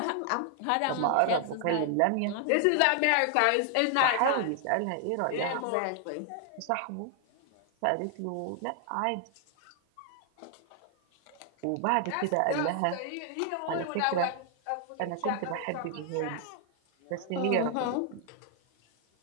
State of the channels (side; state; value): both; different; correlation 0.00